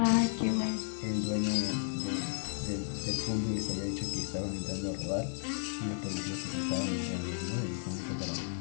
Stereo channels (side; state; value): right; silent; digital silence